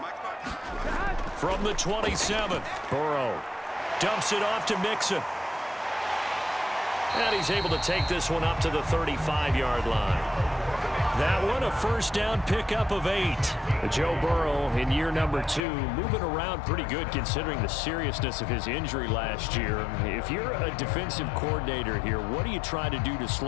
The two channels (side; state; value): right; drops out; at 15.6 s